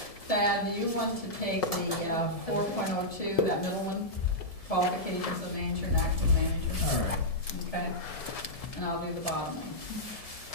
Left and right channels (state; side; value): late; right; 1.7 ms